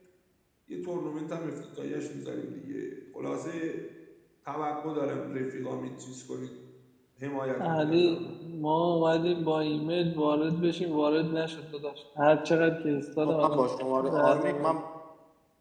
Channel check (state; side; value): identical; both; correlation 1.00